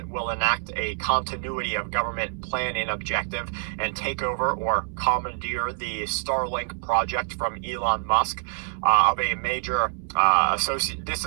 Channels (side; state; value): left; silent; digital silence